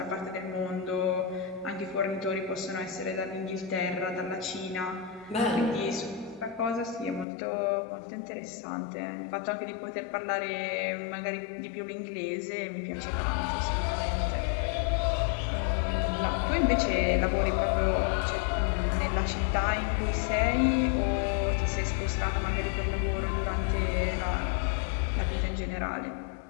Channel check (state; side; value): drops out; right; at 7.2 s